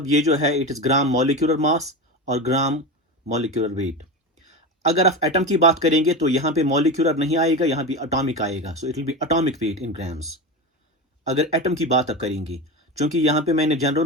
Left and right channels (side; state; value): both; normal; correlation 0.22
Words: ये जो है it is gram molecular मास और ग्राम molecular wait. अगर आप atom की बात करेंगे तो यहां पे मॉलिक्यूलर नहीं आएगा, यहां पे एटॉमिक आएगा. So it will be atomic weight in grams अगर एटम की बात आप करेंगे. क्योंकि यहां पे मैंने जनरल